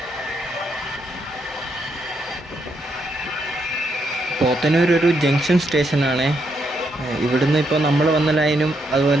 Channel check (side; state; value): both; normal; correlation 0.78